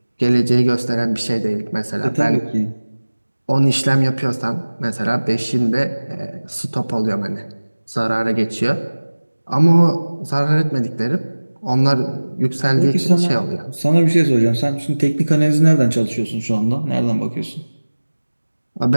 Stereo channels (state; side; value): inverted; both; correlation -1.00